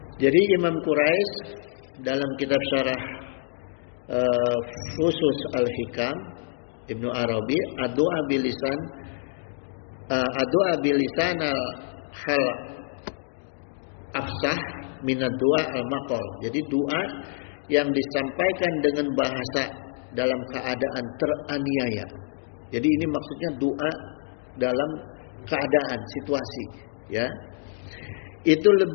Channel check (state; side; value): silent; right; 61 dB below the other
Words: Jadi Imam Quraisy dalam kitab syarah Fusus al-Hikam Ibnu Arabi, ad-du'a bilisan al-hal afsah minad du'a al-maqal. Jadi doa yang disampaikan dengan bahasa dalam keadaan teraniaya. Jadi ini maksudnya doa dalam keadaan situasi, ya. Itu